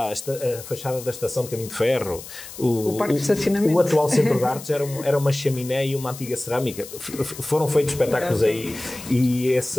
a fachada da Estação de Caminho de Ferro, o Parque de Estacionamento. O atual Centro de Artes era uma chaminé e uma antiga cerâmica. Foram feitos espetáculos aí, e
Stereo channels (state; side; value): noise; left; hiss, 14 dB below the sound